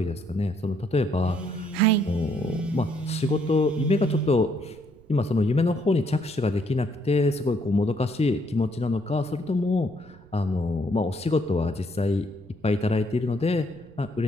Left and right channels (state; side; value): noise; right; rumble, 26 dB below the sound